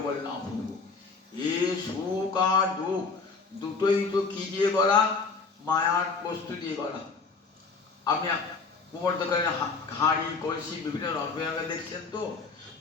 বলে না প্রভু, এ সুখ আর দুঃখ দুটোই তো কি দিয়ে গড়া? মায়ার বস্তু দিয়ে গড়া। আপনি কুমোর দোকানে হাঁড়ি কলসি বিভিন্ন রঙে দেখছেন তো,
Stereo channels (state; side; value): quieter; right; 4.5 dB